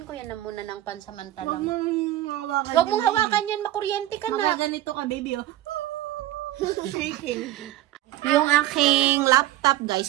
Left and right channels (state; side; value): quieter; left; 14.9 dB